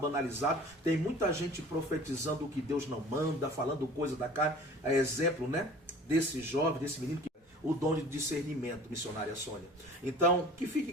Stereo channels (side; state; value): both; normal; correlation 0.45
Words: Tem muita gente profetizando o que Deus não manda, falando coisa da carne. É exemplo, né? Desse jovem, desse menino que o dom de discernimento, missionária Sônia. Então, que